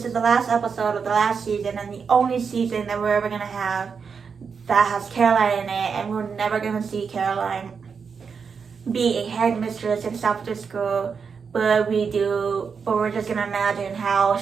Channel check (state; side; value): quieter; left; 5.9 dB